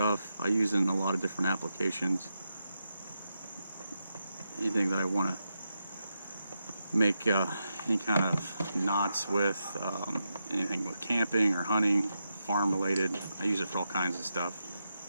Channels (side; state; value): both; inverted; correlation -0.86